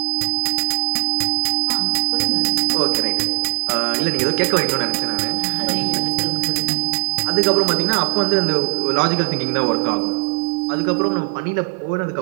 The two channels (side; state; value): left; silent; digital silence